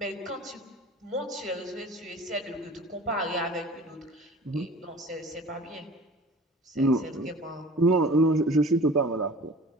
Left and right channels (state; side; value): normal; both; correlation 0.42